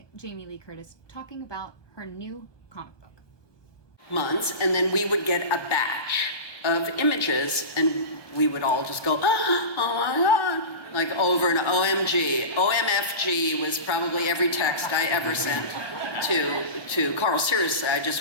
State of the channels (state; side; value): late; right; 1.3 ms